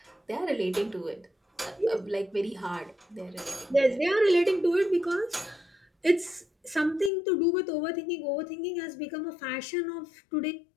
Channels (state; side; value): drops out; right; at 7.1 s